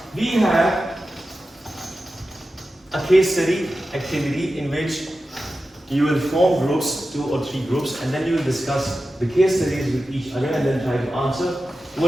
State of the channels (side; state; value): both; normal; correlation 0.93